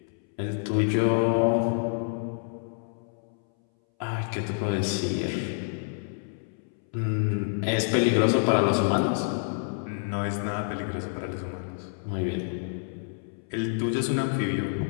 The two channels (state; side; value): silent; right; 59 dB below the other